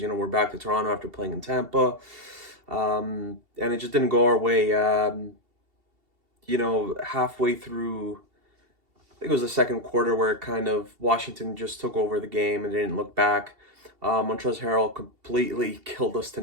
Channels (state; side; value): late; left; 2.7 ms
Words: We're back to Toronto after playing in Tampa, and it just didn't go our way. Halfway through, I think it was the second quarter where kind of Washington just took over the game and they didn't look back. Montrezl Harrell completely killed us